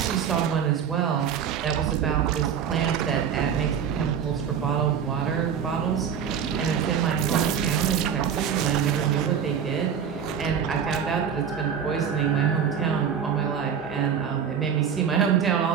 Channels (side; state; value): left; quieter; 7.8 dB